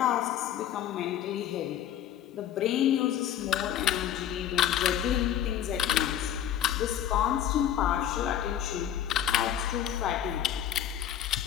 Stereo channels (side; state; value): right; quieter; 10.6 dB